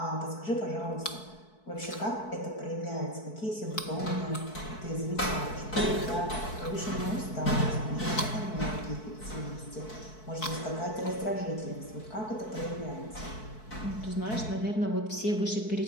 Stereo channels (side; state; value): right; late; 4.6 ms